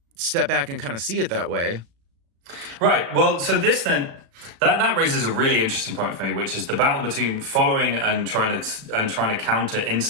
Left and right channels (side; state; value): left; late; 36 ms